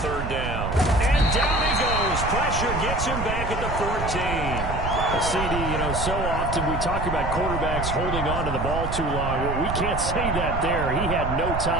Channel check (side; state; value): right; noise; rumble, 4 dB below the sound